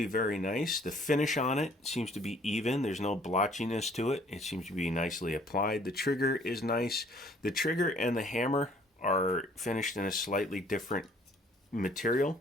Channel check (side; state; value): both; normal; correlation 0.58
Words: very nice. The finish on it seems to be even. There's no blotchiness to it. It seems to be nicely applied. The trigger is nice. The trigger and the hammer are finished in a slightly different material,